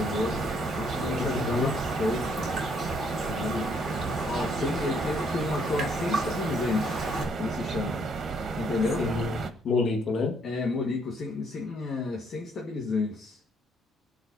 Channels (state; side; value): normal; both; correlation 0.68